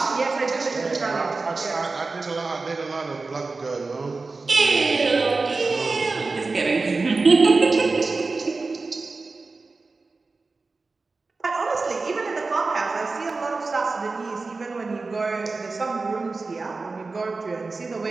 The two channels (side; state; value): left; quieter; 3.8 dB